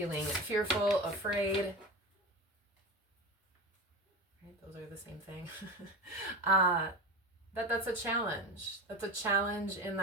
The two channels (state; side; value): normal; both; correlation 0.26